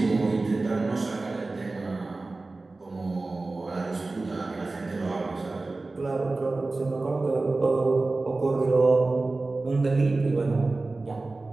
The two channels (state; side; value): quieter; left; 3.3 dB